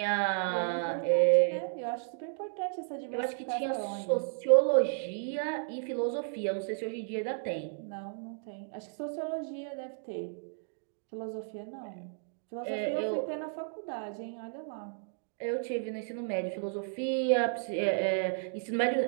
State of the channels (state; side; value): silent; left; digital silence